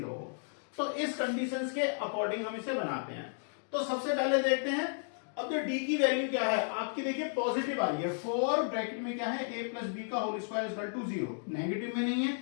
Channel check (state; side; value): silent; right; digital silence